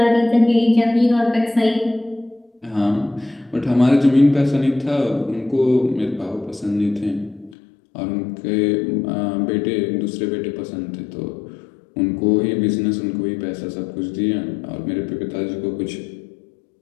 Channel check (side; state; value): right; drops out; at 7.6 s